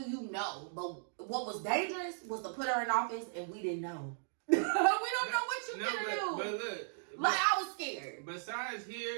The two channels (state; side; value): silent; left; digital silence